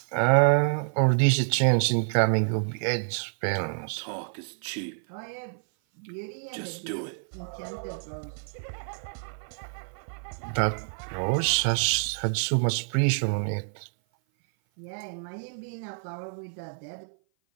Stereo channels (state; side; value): silent; left; 56 dB below the other